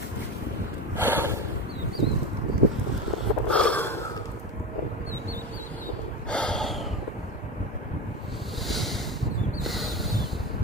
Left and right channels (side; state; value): both; normal; correlation 0.22